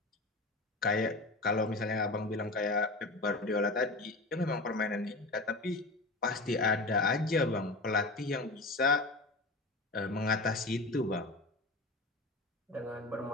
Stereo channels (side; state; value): right; quieter; 3.0 dB